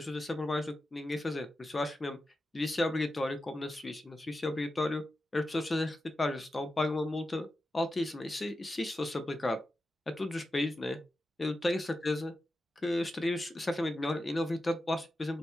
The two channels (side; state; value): both; normal; correlation 0.91